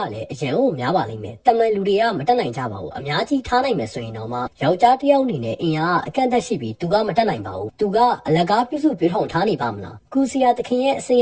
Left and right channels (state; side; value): identical; both; correlation 1.00